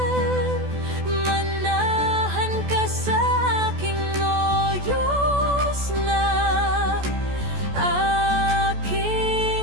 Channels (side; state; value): left; late; 14 ms